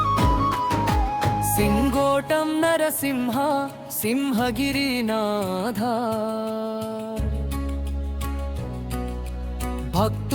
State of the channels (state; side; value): identical; both; correlation 1.00